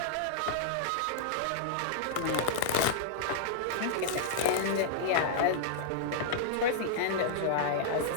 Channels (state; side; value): different; both; correlation -0.01